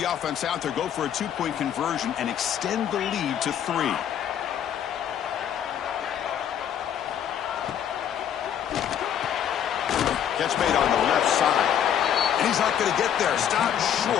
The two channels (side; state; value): right; quieter; 9.5 dB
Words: offense out there, go for a 2-point conversion, and extend the lead to 3. Catch made on the left side. And he's not going to get there. Stopped